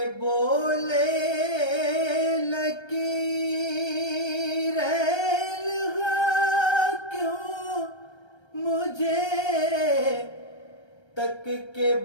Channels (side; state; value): right; late; 1.3 ms